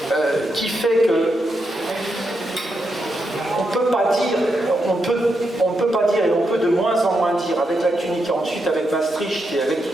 qui fait que on ne peut pas dire, et on peut de moins en moins dire, avec l'acte unique et ensuite avec Maastricht et avec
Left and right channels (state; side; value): normal; both; correlation 0.83